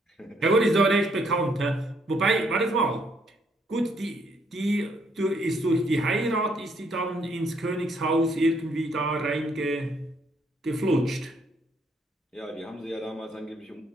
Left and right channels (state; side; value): normal; both; correlation 0.70